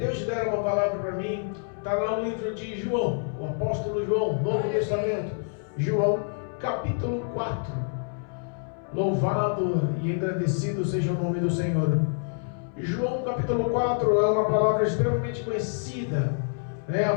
deram uma palavra para mim, está lá no livro de João, o apóstolo João, Novo Testamento, João, capítulo 4. Louvado e engrandecido seja o nome do Senhor. João, capítulo 4, é uma palavra extremamente conhecida, a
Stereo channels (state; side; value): silent; right; 60 dB below the other